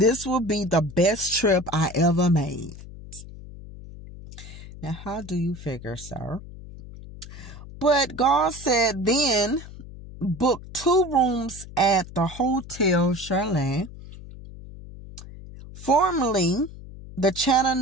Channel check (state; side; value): noise; left; hum, 15 dB below the sound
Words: will be the best trip I ever made." Now, how do you figure, sir? But Gaal said then booked 2 rooms at the Hotel Chalet, formerly the